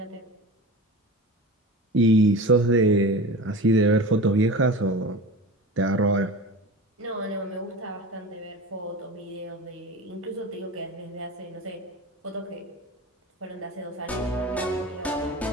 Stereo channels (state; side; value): normal; both; correlation 0.32